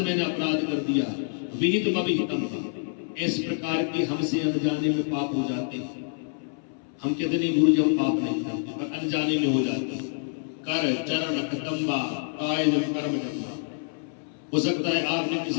मैंने अपराध कर दिया। विहित अविहितम, इस प्रकार के हमसे अनजाने में पाप हो जाते हैं। हम कहते नहीं गुरु जी हम पाप नहीं करते, पर अनजाने में हो जाते हैं। कर चरण कतंबा काय जन कर्म जन्मा, हो सकता है आपने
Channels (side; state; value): right; silent; 60 dB below the other